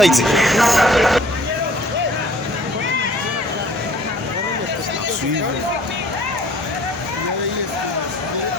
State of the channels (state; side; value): normal; both; correlation 0.54